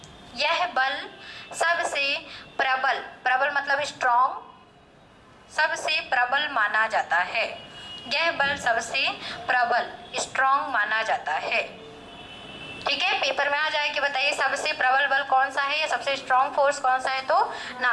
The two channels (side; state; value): both; identical; correlation 1.00